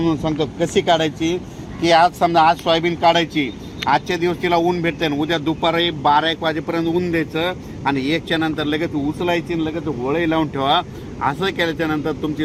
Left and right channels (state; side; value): identical; both; correlation 1.00